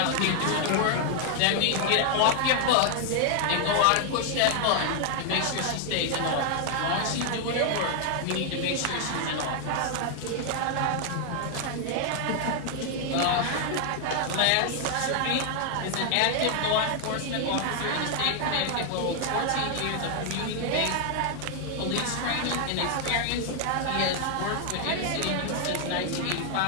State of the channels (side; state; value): both; different; correlation 0.00